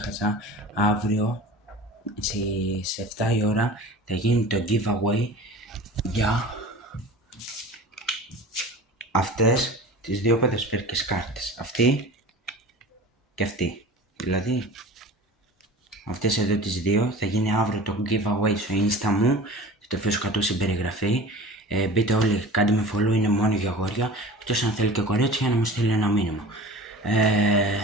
αύριο στις 7 η ώρα θα γίνει το giveaway για αυτές τις δύο ποδοσφαιρικές κάρτες. Αυτή και αυτή. Δηλαδή, αυτές εδώ τις δύο θα γίνει αύριο το giveaway στο insta μου. Θα το αφήσω κάτω στην περιγραφή. Μπείτε όλοι, κάντε με follow, είναι μόνο για αγόρια. Εκτός αν θέλει και κορίτσια να μου στείλει ένα μήνυμα.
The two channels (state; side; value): normal; both; correlation 0.38